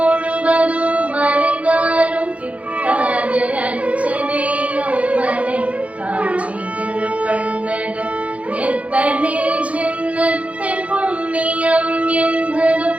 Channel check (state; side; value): late; left; 0.065 ms